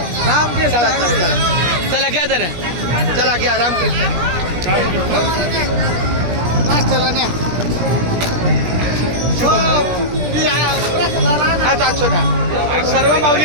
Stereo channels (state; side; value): late; left; 17 ms